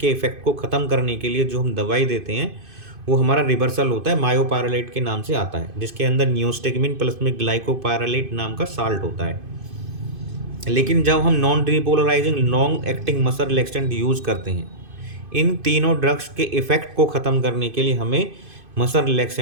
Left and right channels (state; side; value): late; left; 2.5 ms